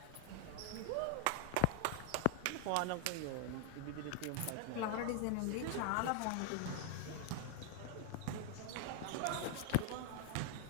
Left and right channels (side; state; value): both; different; correlation 0.00